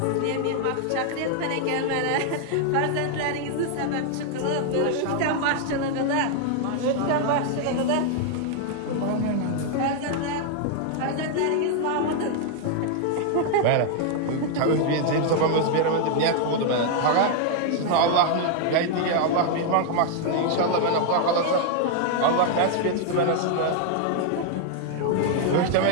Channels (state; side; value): different; both; correlation 0.00